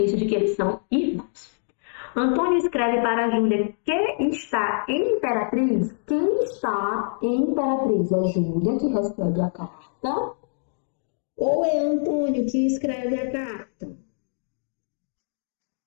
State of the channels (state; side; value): silent; right; 62 dB below the other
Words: de que eles são irmãos. Antônio escreve para a Júlia que está em Imperatriz. Quem está em Imperatriz? É Júlia que recebe a carta? Ou é Antônio que escreve a carta?